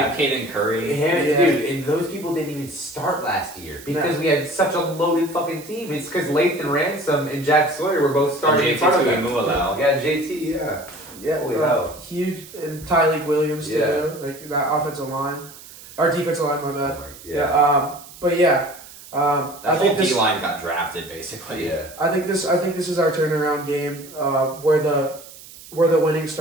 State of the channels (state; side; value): noise; right; hiss, 18 dB below the sound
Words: Caden Curry. Yeah. Dude, and those people didn't even start last year because we had such a loaded fucking team. It's because Lathan Ransom and Jack Sawyer were both starting in front of them. Tuimualau. Yeah, JT, yeah. Yeah, Holy hell. huge, and Tyleek Williams too. Yeah. Like that offensive line, our defensive line. My bad. Yeah. But yeah, That I whole think D this. line got drafted basically. Yeah. I think this is our turnaround game, where the winning